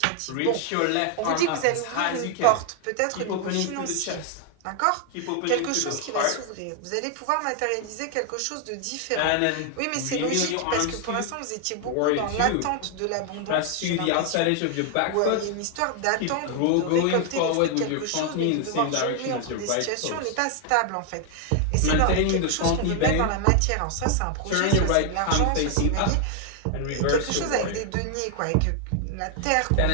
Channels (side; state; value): both; different; correlation 0.00